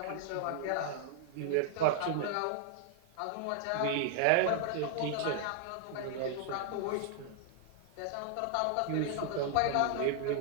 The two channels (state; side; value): different; both; correlation 0.00